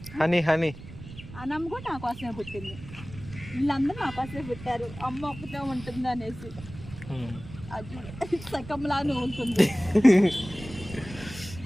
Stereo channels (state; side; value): noise; right; rumble, 14 dB below the sound